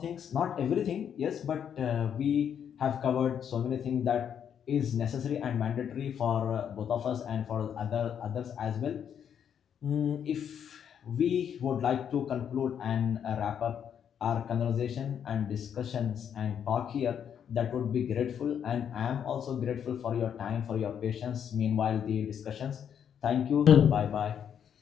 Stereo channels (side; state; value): right; quieter; 8.5 dB